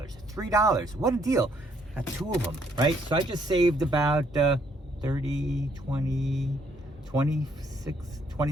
what a deal. Got two of them, right? So I just saved about 30, 20, 26,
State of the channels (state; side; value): normal; both; correlation 0.69